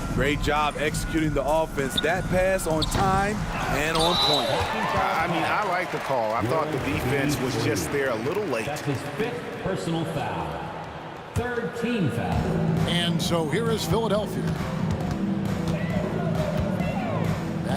Great job executing the offense. That pass on time and on point. I mean, I like the call. I thought the defense was just there a little late. That's his 5th personal foul. 3rd team foul. And so here is Philadelphia.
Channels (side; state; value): both; identical; correlation 1.00